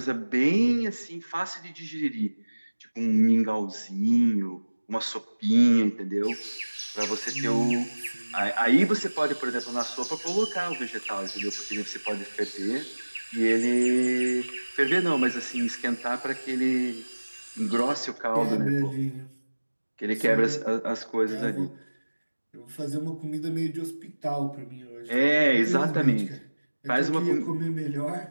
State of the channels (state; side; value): inverted; both; correlation -1.00